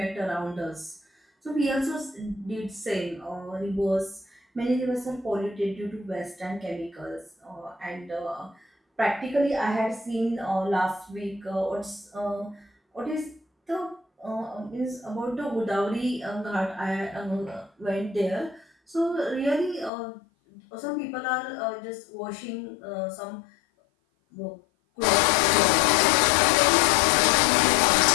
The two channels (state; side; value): drops out; right; at 19.9 s